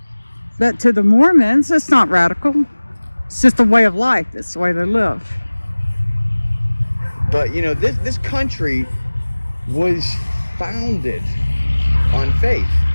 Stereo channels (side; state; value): both; inverted; correlation -1.00